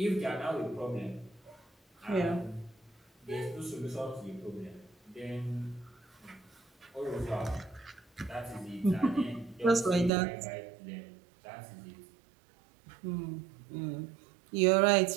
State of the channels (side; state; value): left; drops out; at 10.1 s